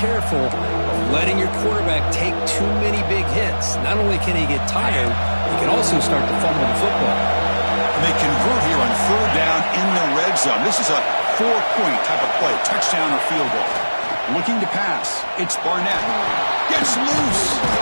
of letting your quarterback take too many big hits. Not only can he get tired, he can also start to fumble the football. And they convert here on 3rd down in the red zone. This is a 4-point type of play, touchdown or field goal. Looking to pass. It's Barnett. Gets loose.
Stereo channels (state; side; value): inverted; both; correlation -1.00